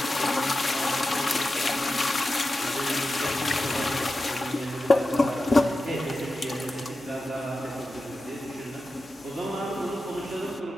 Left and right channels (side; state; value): both; normal; correlation 0.92